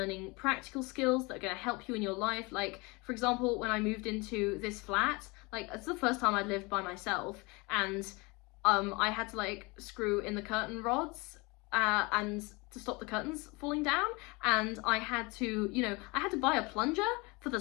practical skills that are going to help you in your life. Like, for example, when I moved into this flat, it's the first time I'd lived by myself, and I had to screw in the curtain rods and to stop the curtains falling down, and I had to buy a plunger for the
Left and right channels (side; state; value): right; quieter; 26.4 dB